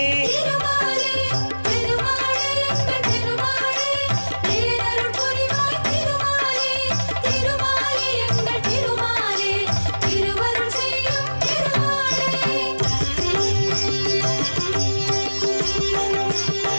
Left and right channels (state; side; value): inverted; both; correlation -1.00